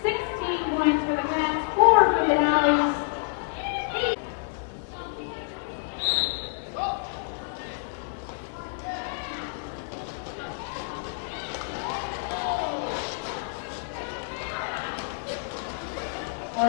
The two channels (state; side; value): silent; right; digital silence